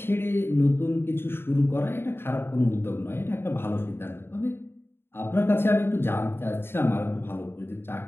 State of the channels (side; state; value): right; late; 0.11 ms